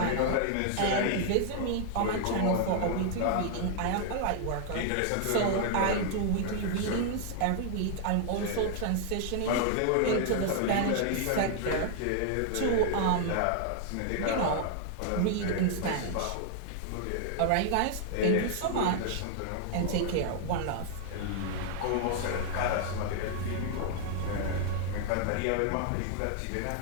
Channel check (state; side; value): different; both; correlation 0.00